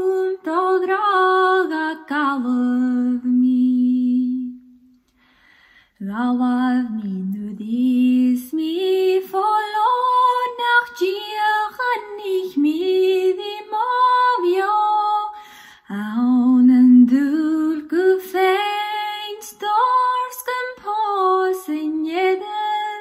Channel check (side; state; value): both; identical; correlation 1.00